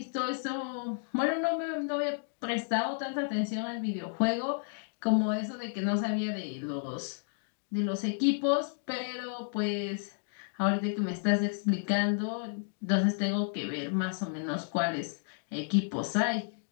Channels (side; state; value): right; silent; digital silence